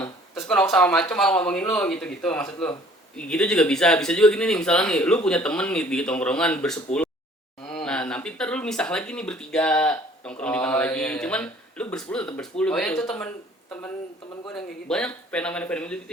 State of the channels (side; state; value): both; normal; correlation 0.55